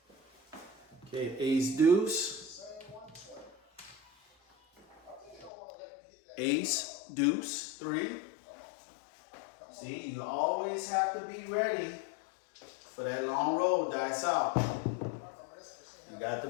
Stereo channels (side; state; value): right; drops out; at 5.5 s